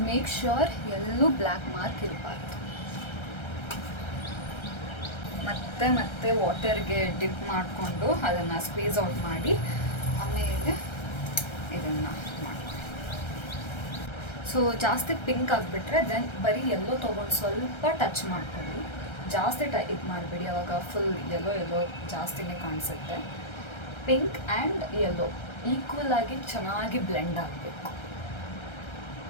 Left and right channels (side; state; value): right; late; 1.3 ms